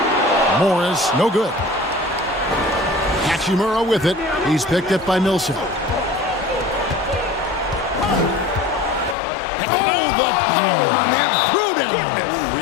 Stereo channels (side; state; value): right; drops out; at 9.2 s